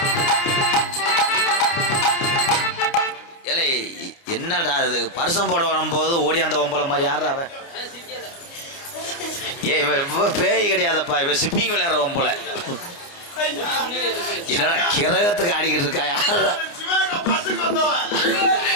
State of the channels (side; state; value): right; late; 29 ms